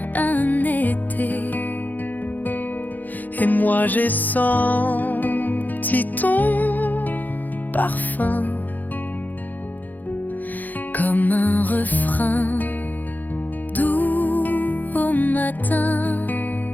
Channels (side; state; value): right; late; 0.084 ms